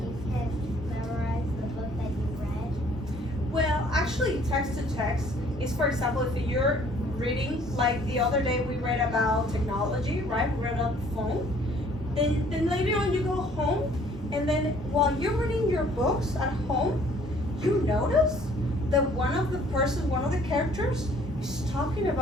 you can memorize the book that you read. Well, actually, text to text is, for example, if you're reading, like the other day we read about technology, right? We read about the phone. Then later on you go home, and then while you're reading your books at home, you notice that one of the characters is talking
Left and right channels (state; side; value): normal; both; correlation 0.58